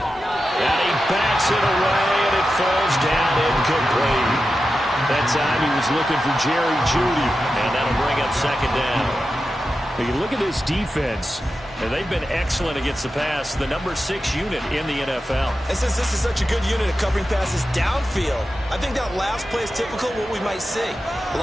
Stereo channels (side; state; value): both; normal; correlation 0.91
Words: he bats it away, and it falls down incomplete. That time he was looking for Jerry Jeudy, and that'll bring up second down. You look at this defense, and they've been excellent against the pass, the number 6 unit in the NFL. And since this is such a good unit of covering passes downfield, I think that last play is typical of what we might see. A